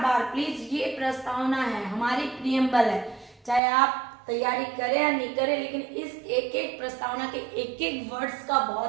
बार प्लीज, ये प्रस्तावना है, हमारी प्रियम्बल है, चाहे आप तैयारी करें या नहीं करें, लेकिन इस एक एक प्रस्तावना के एक एक वर्ड्स का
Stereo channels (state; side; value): drops out; left; at 3.6 s